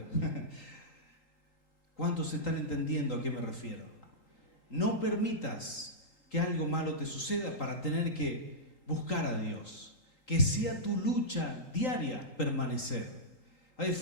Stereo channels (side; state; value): right; late; 3.8 ms